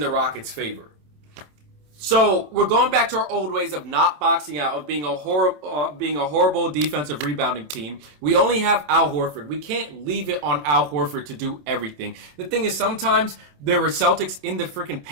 Rockets' favor. So we're going back to our old ways of not boxing out, of being a horrible defensive rebounding team. We only have Al Horford. We can't leave it on Al Horford to do everything. The thing is, sometimes there were Celtics in the freaking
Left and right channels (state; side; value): late; left; 27 ms